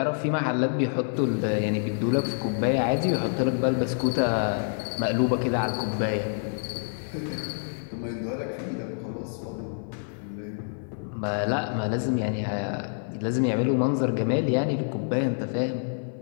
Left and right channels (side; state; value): right; silent; 56 dB below the other